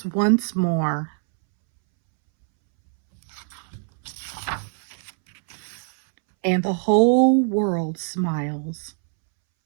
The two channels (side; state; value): left; silent; 63 dB below the other